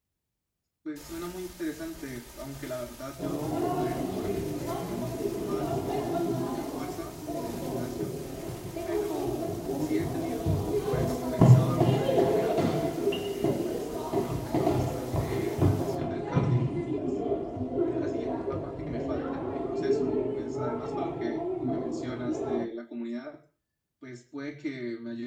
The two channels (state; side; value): identical; both; correlation 1.00